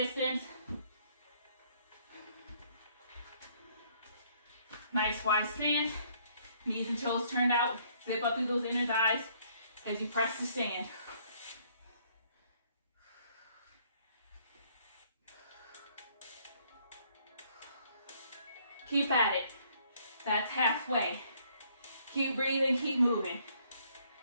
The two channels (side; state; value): both; inverted; correlation -0.64